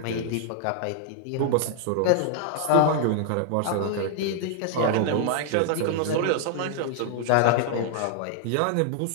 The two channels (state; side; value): different; both; correlation 0.00